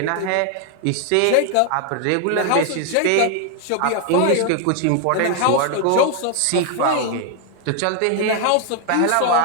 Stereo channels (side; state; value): both; different; correlation 0.00